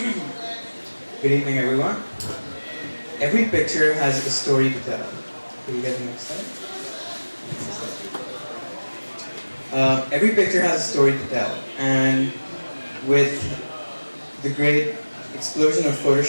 Good evening, everyone. Every picture has a story to tell. Can you get the next slide? Every picture has a story to tell, and with the great explosion of photo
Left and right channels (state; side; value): inverted; both; correlation -1.00